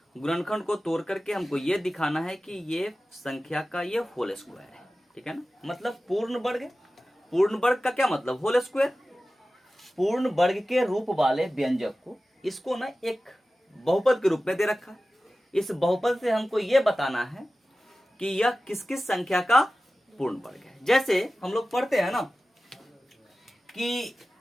गुणनखंड को तोड़ करके हमको ये दिखाना है कि ये संख्या का ये होल स्क्वायर है, ठीक है ना। मतलब पूर्ण वर्ग, पूर्ण वर्ग का क्या मतलब, होल स्क्वायर। पूर्ण वर्ग के रूप वाले व्यंजक को, इसको ना एक बहुपद के रूप में दे रखा है। इस बहुपद से हमको ये बताना है कि यह किस किस संख्या का पूर्ण वर्ग है। जैसे हम लोग पढ़ते हैं ना कि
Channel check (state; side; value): normal; both; correlation 0.95